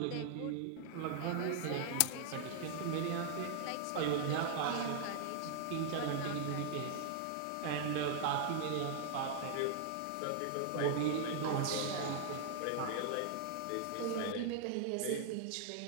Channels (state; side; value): different; both; correlation 0.00